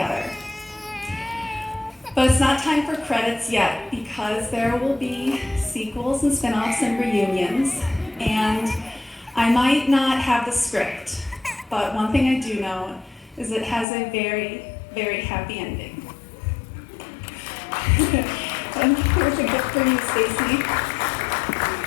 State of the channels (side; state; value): right; drops out; at 13.9 s